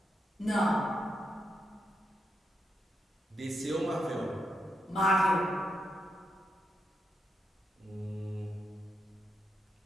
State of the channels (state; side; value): normal; both; correlation 0.83